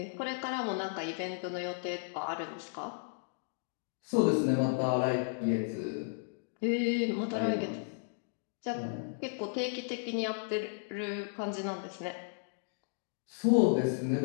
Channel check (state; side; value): silent; right; digital silence